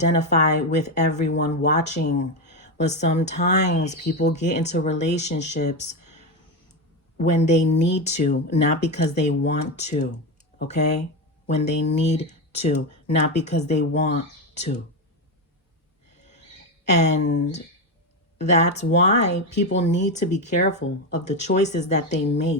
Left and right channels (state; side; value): normal; both; correlation 0.13